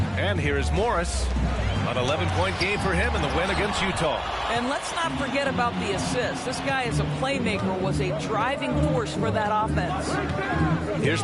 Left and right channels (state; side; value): identical; both; correlation 1.00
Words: And here is Morris. An 11-point game for him in the win against Utah. And let's not forget about the assist. This guy is a playmaker, was a driving force for that offense. Here's